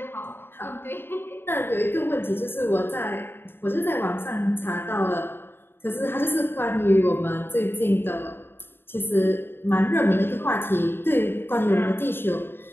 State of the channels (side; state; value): right; late; 0.11 ms